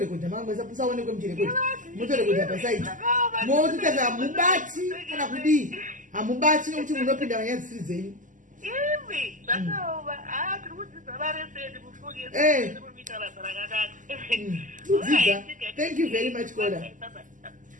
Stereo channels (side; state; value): left; late; 0.37 ms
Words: mangwe musaonekwe muchirekodha motorekodha pasaiti mototaza hamubati kana kudii hamubati nokuti munopinda vanyaya dzisiri dzenyu imi zvakaoma tiri kudzidza vareseni kufukimuita basa rakanaka kudzidza. Thank you very much koda